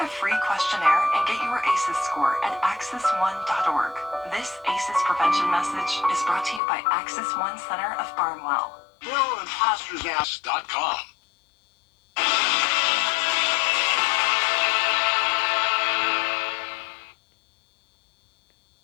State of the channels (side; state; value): right; drops out; at 6.6 s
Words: free questionnaire and get your ACEs score at access1.org. This ACEs prevention message is brought to you by Access One Center of Barnwell. BillImposters.com.